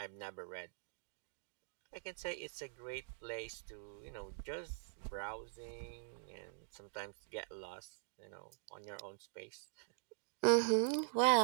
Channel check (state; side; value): silent; left; digital silence